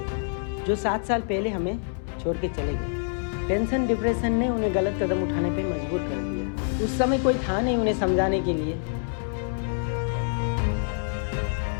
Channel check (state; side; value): silent; right; 61 dB below the other